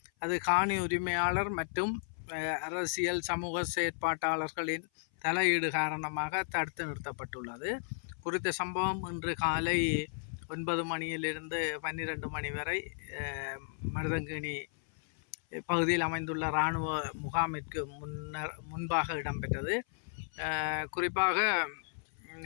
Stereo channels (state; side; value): silent; right; 55 dB below the other